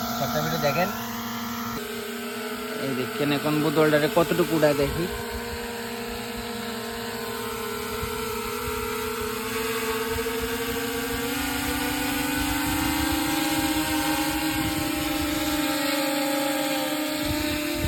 সবটা ভিডিও দেখেন। এই দেখেন এখন বোতলটারে কতটুকু উঠায় দেখি।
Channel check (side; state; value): both; identical; correlation 1.00